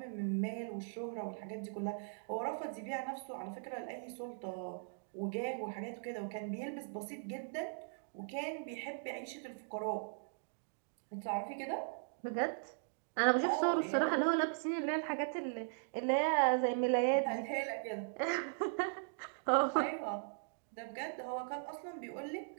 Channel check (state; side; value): silent; left; digital silence